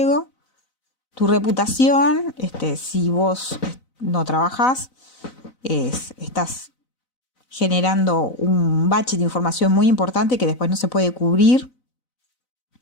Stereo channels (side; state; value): right; late; 4.0 ms